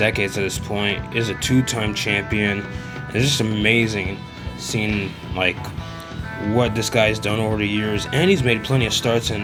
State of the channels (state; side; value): identical; both; correlation 1.00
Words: at this point, is a two-time champion. It's just amazing seeing like what this guy's done over the years, and he's made plenty of starts in